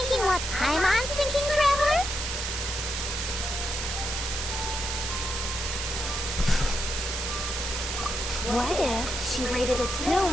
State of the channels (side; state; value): right; noise; hiss, 3 dB below the sound